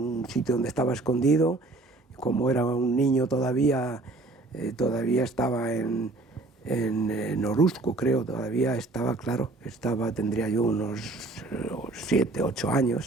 sitio donde estaba escondido, como era un niño todavía estaba en Oruzco, creo, todavía estaba, claro, tendría yo unos 7, 8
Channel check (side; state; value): left; quieter; 3.1 dB